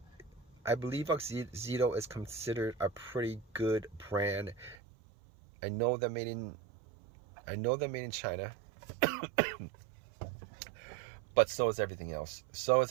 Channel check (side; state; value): left; drops out; at 4.8 s